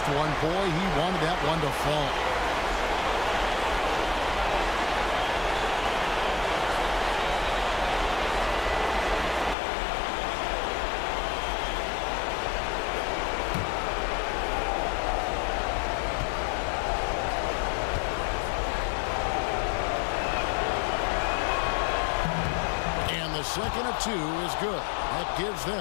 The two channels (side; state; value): right; drops out; at 9.6 s